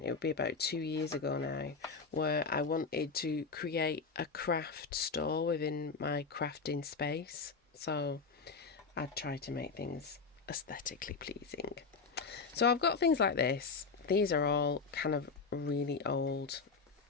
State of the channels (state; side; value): quieter; right; 4.8 dB